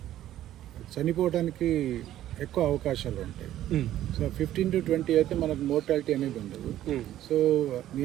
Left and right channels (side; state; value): left; quieter; 12.8 dB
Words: చనిపోవడానికి ఎక్కువ అవకాశాలు ఉంటాయి. సో 15 to 20 అయితే మనకు మోర్టాలిటీ అనేది ఉండదు. సో